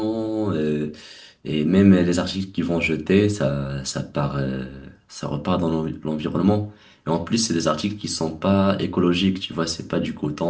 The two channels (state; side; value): identical; both; correlation 1.00